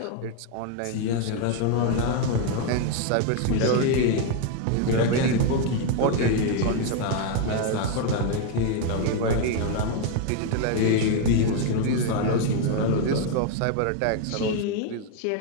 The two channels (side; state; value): both; different; correlation 0.01